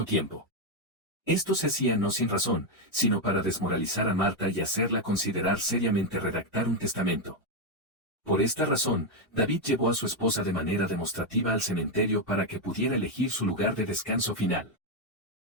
tiempo. Esto se hacía no sin razón, sino para desmoralizar a Marta y hacerla considerar seriamente redactar un testamento. Por esta razón, David llevó a su esposa de manera demostrativa al cementerio para que pudiera elegir su lugar de descanso final.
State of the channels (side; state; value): both; normal; correlation 0.04